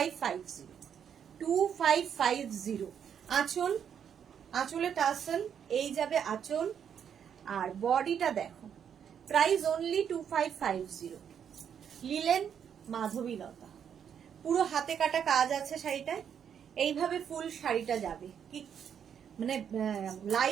2550। আঁচল, আঁচলে টাসেল, এই যাবে আঁচল। আর বডিটা দেখো, প্রাইস অনলি 2550, লিলেন মাধবীলতা, পুরো হাতে কাটা কাজ আছে শাড়িটায়। এইভাবে ফুল শাড়িটা যাবে, কি মানে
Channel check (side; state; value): left; quieter; 8.2 dB